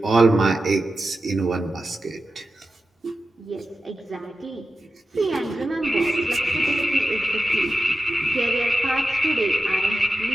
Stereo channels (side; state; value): both; normal; correlation 0.91